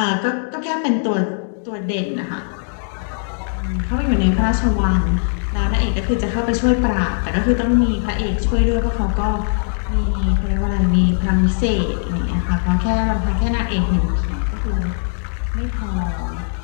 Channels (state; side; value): silent; right; digital silence